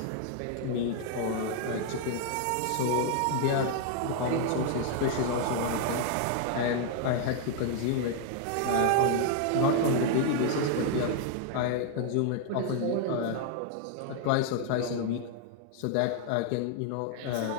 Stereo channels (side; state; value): both; different; correlation 0.00